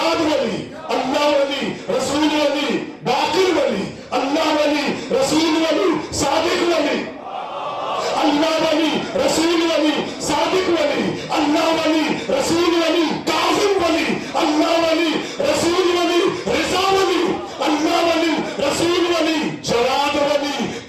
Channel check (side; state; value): both; identical; correlation 1.00